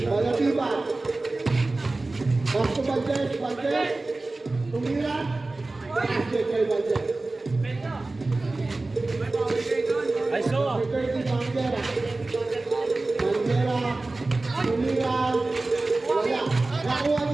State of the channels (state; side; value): quieter; left; 3.2 dB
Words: Balatibat. Basko Bandes. Bandes. Pumila. Basket kay Bandes. I saw! 30 Manguera. Manguera. Pumila. Wala. Nakuha